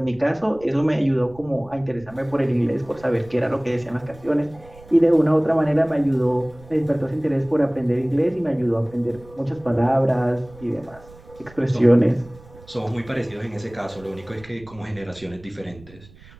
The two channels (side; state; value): right; noise; rumble, 22 dB below the sound